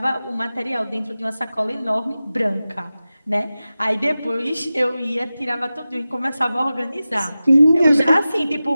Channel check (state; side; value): inverted; both; correlation -0.95